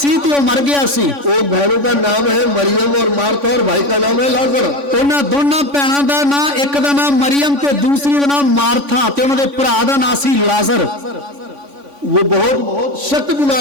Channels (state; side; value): late; left; 3.5 ms